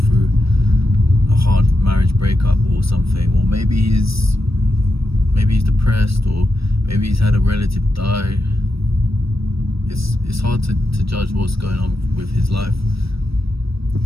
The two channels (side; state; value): left; late; 0.76 ms